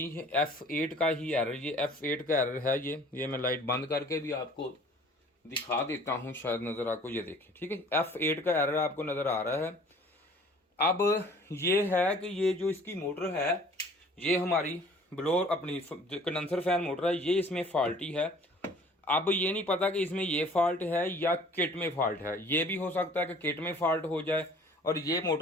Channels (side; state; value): both; normal; correlation 0.51